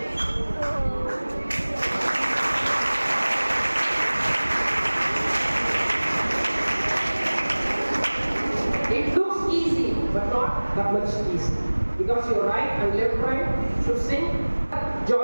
It looks easy, but not that much easy. Because your right and left brain should sync.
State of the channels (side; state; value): both; inverted; correlation -1.00